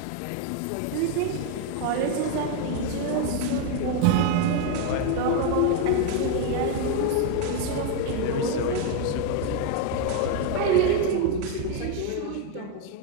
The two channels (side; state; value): both; different; correlation 0.01